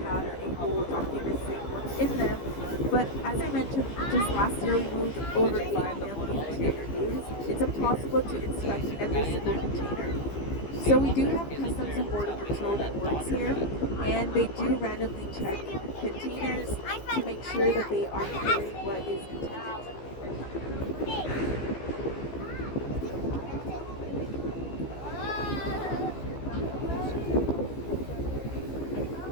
have a whole document in them. But as I mentioned, just last year we moved over 5 million containers. It's impossible to inspect every single container. So we do have Customs and Border Patrol that works here, and they do randomly check containers to make sure that they are carrying what is contained.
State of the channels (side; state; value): right; late; 15 ms